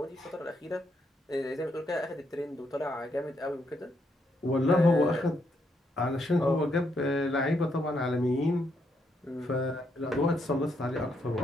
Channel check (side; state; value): both; normal; correlation 0.77